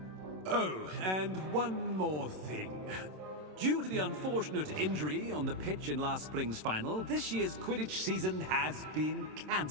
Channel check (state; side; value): late; left; 27 ms